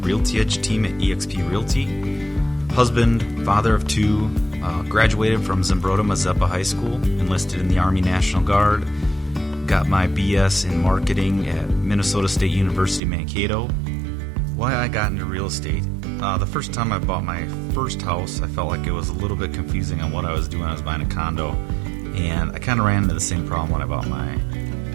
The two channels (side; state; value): left; drops out; at 13.0 s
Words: Edge Team at eXp Realty. Husband, father of two, graduated from Zimbrota Mazeppa High School, enlisted in the Army National Guard, got my BS in marketing at Minnesota State University Mankato. Why I got into real estate. The first time I bought my first house, I felt like it was a little bit confusing on what I was doing. I was buying a condo, and I kind of ran into the same problem when I bought my